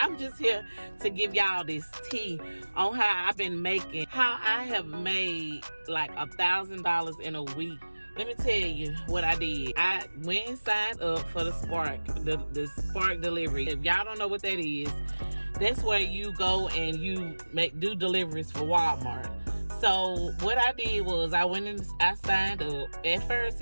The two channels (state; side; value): inverted; both; correlation -1.00